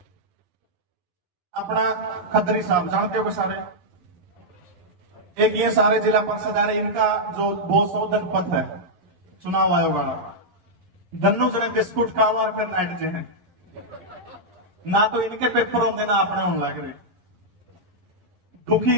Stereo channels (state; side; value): late; left; 11 ms